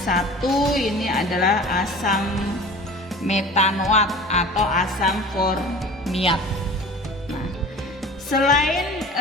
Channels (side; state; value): both; normal; correlation 0.40